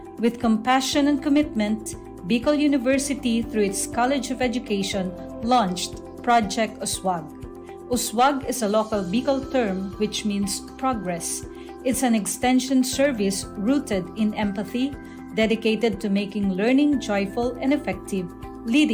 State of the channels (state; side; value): identical; both; correlation 1.00